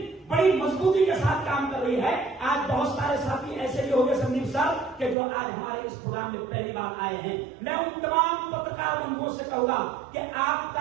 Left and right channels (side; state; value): left; drops out; at 5.2 s